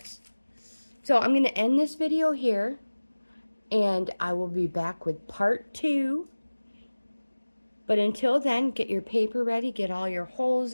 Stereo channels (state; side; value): inverted; both; correlation -1.00